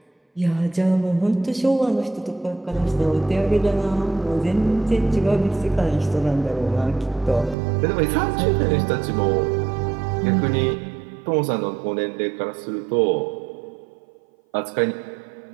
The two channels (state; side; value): drops out; left; at 7.6 s